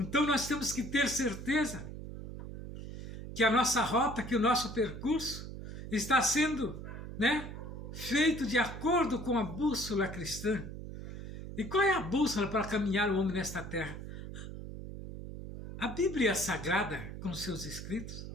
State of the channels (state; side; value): noise; right; hum, 9 dB below the sound